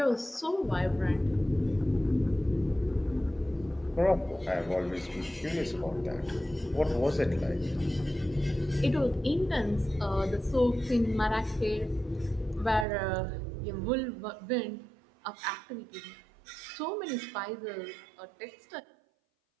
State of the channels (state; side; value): drops out; left; at 12.9 s